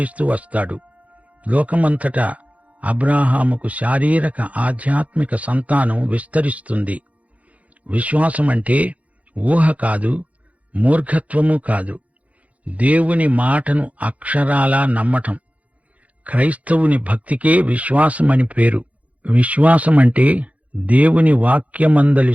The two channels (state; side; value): late; left; 0.068 ms